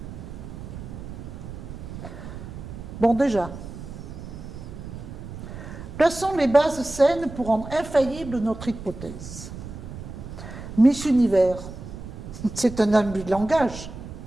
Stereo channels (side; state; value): right; noise; rumble, 11 dB below the sound